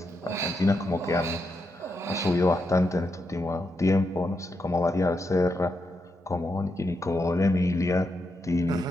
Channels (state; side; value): normal; both; correlation 0.83